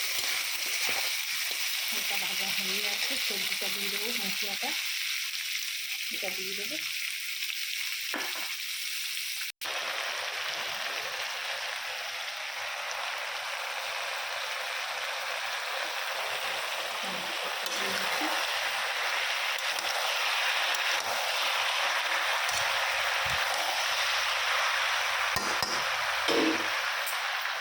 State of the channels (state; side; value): identical; both; correlation 1.00